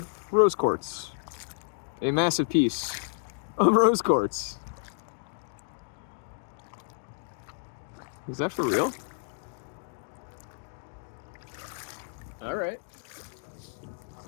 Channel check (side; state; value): right; silent; digital silence